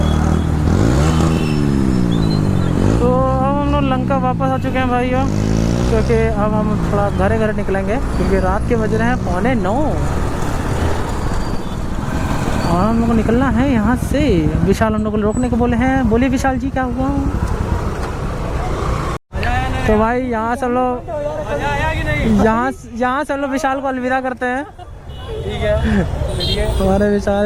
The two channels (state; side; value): identical; both; correlation 1.00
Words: लंका वापस आ चुके हैं भाइयों, क्योंकि अब हम थोड़ा घरे निकलेंगे क्योंकि रात के बज रहे हैं 8:45 और हम लोग को निकलना है यहाँ से। विशाल हम लोग को रोकने को बोले हैं। बोलिए विशाल जी क्या हुआ? तो भाई यहाँ से लोग यहाँ से लोग विशाल को अलविदा करते हैं। ठीक है हमारे